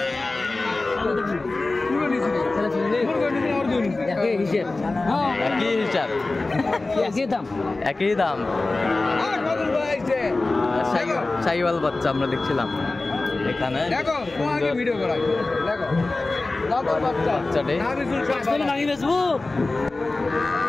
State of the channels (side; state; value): right; quieter; 3.2 dB